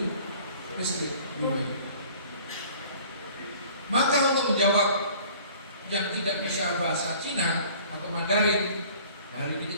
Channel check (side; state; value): both; inverted; correlation -0.50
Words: listrik. Maka untuk menjawab yang tidak bisa bahasa Cina atau Mandarin, hari ini